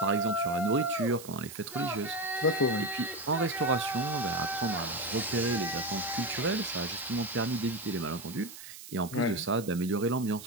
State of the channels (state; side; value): noise; right; hiss, 14 dB below the sound